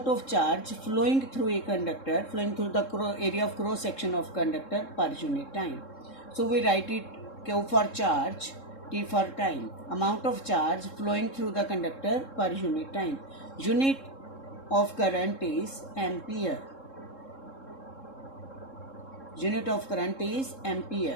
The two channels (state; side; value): late; right; 3.7 ms